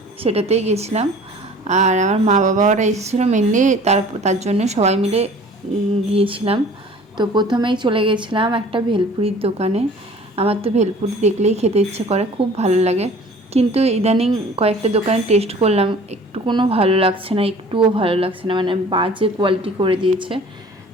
সেটাতেই গেছিলাম। আর আমার মা বাবারা এসেছিলো মেনলি, তার জন্য সবাই মিলে গিয়েছিলাম। তো প্রথমেই চলে গেছিলাম একটা ভেলপুরির দোকানে। আমার তো ভেলপুরি দেখলেই খেতে ইচ্ছে করে, খুব ভালো লাগে। কিন্তু ইদানিং কয়েকটা দোকানে টেস্ট করলাম, একটুকুনো ভালো লাগছে না, একটুও ভালো লাগছে না, মানে বাজে কোয়ালিটি করে দিয়েছে।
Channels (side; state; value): both; normal; correlation 0.48